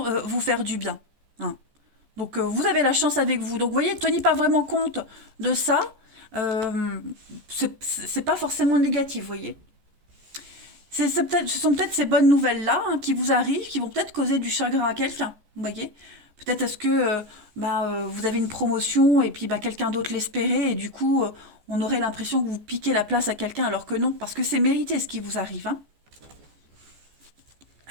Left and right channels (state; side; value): late; left; 14 ms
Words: vous faire du bien. Hein. Donc vous avez la chance avec vous. Donc vous voyez, tenez pas vraiment compte de ça. Euh, c'est pas forcément négatif, vous voyez. Ce sont peut-être ces bonnes nouvelles-là hein, qui vous arrivent, qui vont peut-être causer du chagrin à quelqu'un, vous voyez. Peut-être est-ce que vous avez une promotion et puis bah, quelqu'un d'autre l'espérait et du coup on aurait l'impression que vous piquez la place à quelqu'un alors que non, parce que c'est mérité ce qui vous arrive. Hein.